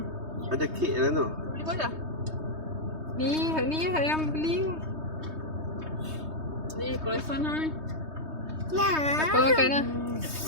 Ada kek dalam tu. Beli apa dah? Ni yang beli. Ni croissant lah ni. Nah. Apa makan lah?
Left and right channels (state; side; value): late; left; 3.2 ms